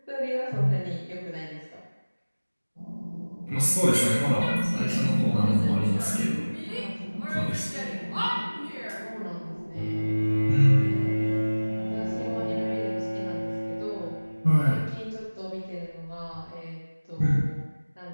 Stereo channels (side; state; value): both; inverted; correlation -1.00